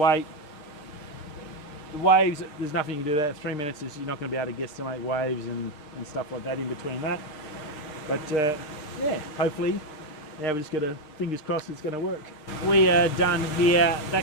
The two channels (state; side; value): late; right; 6.5 ms